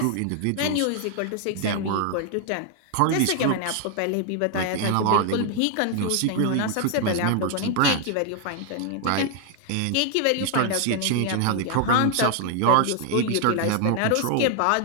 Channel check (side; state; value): both; different; correlation 0.00